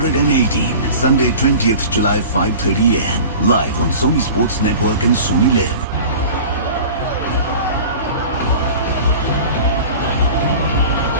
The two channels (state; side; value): inverted; both; correlation -0.39